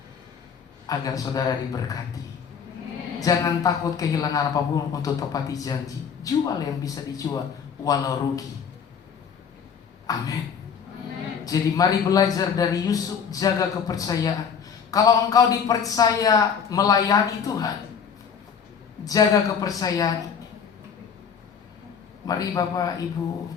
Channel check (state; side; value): quieter; right; 6.9 dB